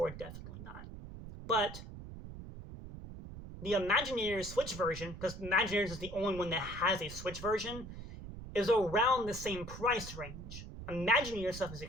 definitely not. But the Imagineers Switch version, because Imagineers is the only one that has a Switch version, is around the same price range. Imagineers stuff is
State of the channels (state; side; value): noise; right; rumble, 11 dB below the sound